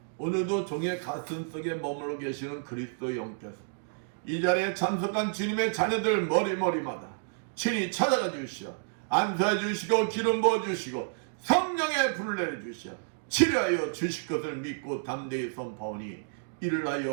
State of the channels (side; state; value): left; silent; digital silence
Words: 오늘도 종의 가슴 속에 머물러 계시는 그리스도 영께서 이 자리에 참석한 주님의 자녀들 머리마다 친히 찾아가 주시어 안수해 주시고 기름 부어 주시고 성령의 불을 내려 주시어 치료하여 주실 것을 믿고 담대히 선포하오니 이를